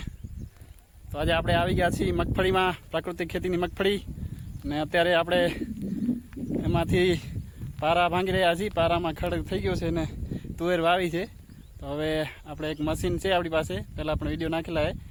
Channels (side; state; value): both; identical; correlation 1.00